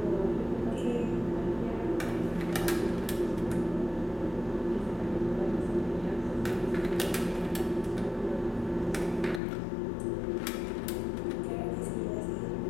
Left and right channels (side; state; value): right; drops out; at 9.4 s